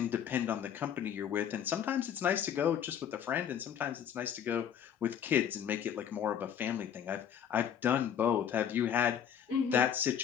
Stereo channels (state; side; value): quieter; right; 8.8 dB